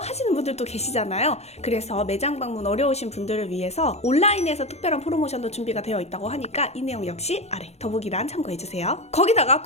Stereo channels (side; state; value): right; late; 0.31 ms